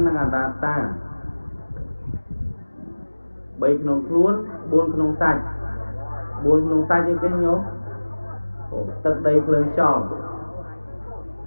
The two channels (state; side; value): inverted; both; correlation -1.00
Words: និងអនត្តា3ក្នុងខ្លួន4ក្នុងសាច់អីគេញោមទឹកដីភ្លើងខ្យល់